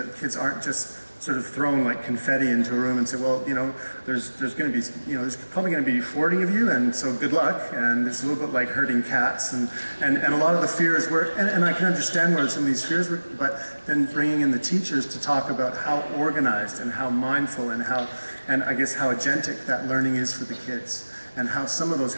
kids aren't just sort of thrown like confetti into a room and say, well, there's going to be, there's probably going to be 40 of you, and so good luck. And it's a little bit like herding cats, and a lot of the fears were, and I can understand where some of these fears were, but then bringing in the teachers to talk about how organized and how mindful and I guess how agentic that learning is for the kids, and how some of those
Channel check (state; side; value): inverted; both; correlation -1.00